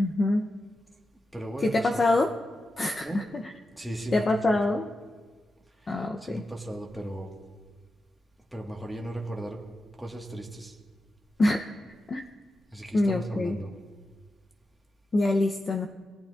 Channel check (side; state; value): both; normal; correlation 0.90